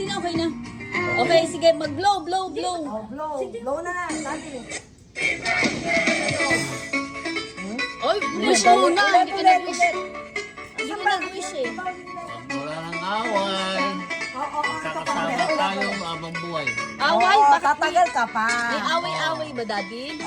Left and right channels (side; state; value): both; identical; correlation 1.00